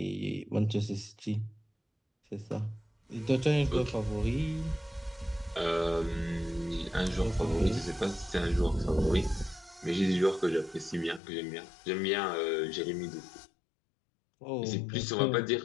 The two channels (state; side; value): drops out; right; at 11.2 s